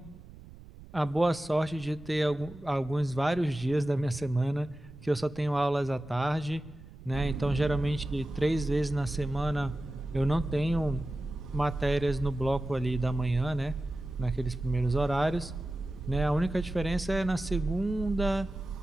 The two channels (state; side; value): noise; right; rumble, 18 dB below the sound